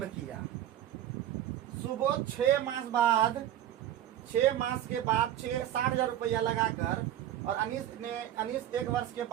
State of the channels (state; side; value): quieter; left; 11.8 dB